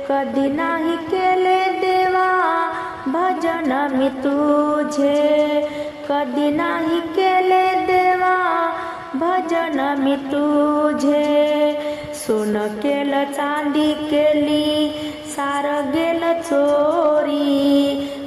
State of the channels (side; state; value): both; identical; correlation 1.00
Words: कधी नाही केले देवा भजन मी तुझे, कधी नाही केले देवा भजन मी तुझे। सोनं केलं चांदी केली सार गेलं चोरी,